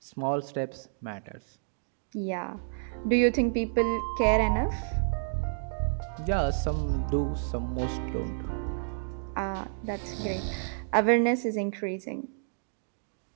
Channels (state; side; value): silent; left; digital silence